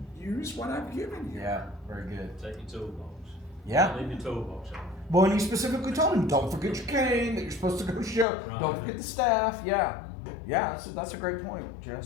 use what I've given you." Yeah. Very good. Take your toolbox. Yeah. Leave your toolbox on. Well, and he specifically told him, "Don't forget your cane that you're supposed to go show. Right. Don't forget the staff." Yeah. Yeah. That's a great point,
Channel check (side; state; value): right; drops out; at 8.2 s